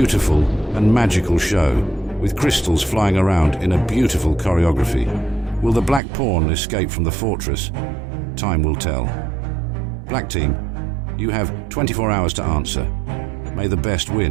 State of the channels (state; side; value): drops out; left; at 6.0 s